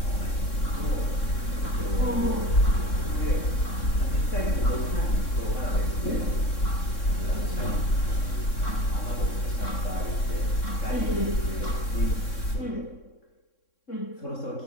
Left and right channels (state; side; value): late; right; 3.6 ms